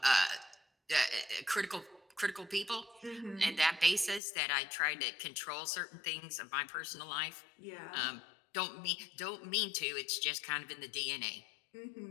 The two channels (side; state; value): right; drops out; at 4.2 s